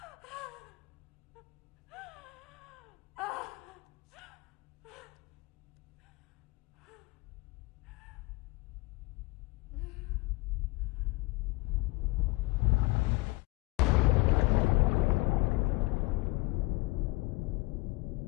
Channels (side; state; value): right; quieter; 23.5 dB